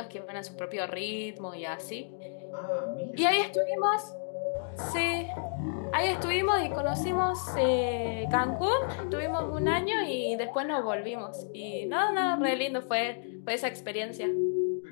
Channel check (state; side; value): silent; right; digital silence